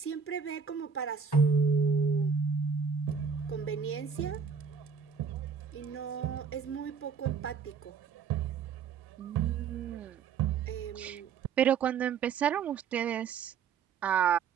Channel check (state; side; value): quieter; left; 6.3 dB